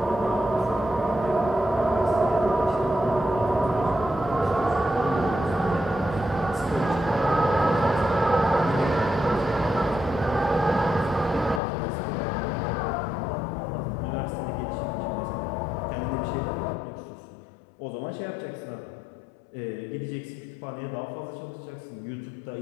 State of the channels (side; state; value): right; drops out; at 11.6 s